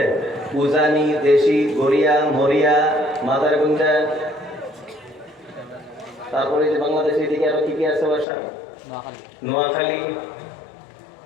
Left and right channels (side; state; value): right; drops out; at 8.2 s